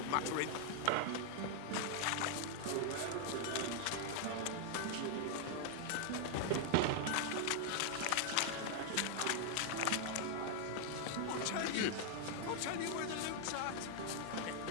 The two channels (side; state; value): both; different; correlation 0.00